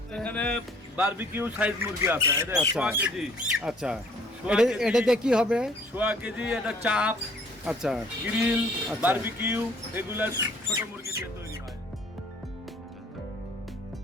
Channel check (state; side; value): normal; both; correlation 0.58